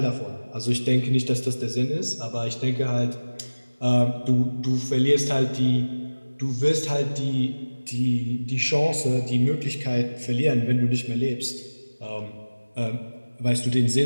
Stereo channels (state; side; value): inverted; both; correlation -1.00